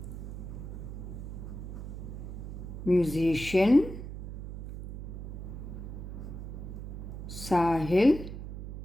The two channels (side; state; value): right; noise; hum, 8 dB below the sound